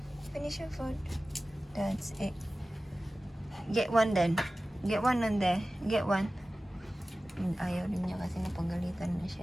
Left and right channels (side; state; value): both; normal; correlation 0.96